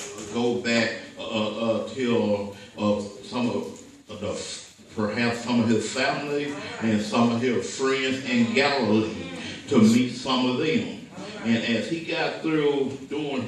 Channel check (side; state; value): both; identical; correlation 1.00